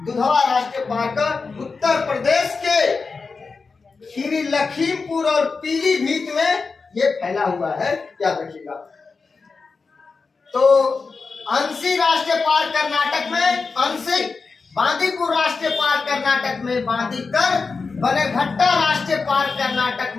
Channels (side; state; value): right; quieter; 4.5 dB